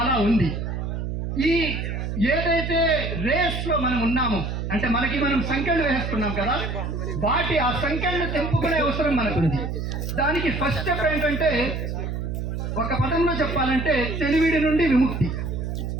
ఉంది. ఈ ఏదైతే రేస్లో మనం ఉన్నామో, అంటే మనం సంఖ్యలు వేసుకున్నాం కదా, ఆ సంఖ్యలను తెంపుకునే అవసరం మనకుంది. దానికి ఫస్ట్ స్టెప్ ఏంటంటే, ఒక పదంలో చెప్పాలంటే తెలివిడి నుండి విముక్తి.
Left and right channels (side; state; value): right; noise; hum, 3 dB below the sound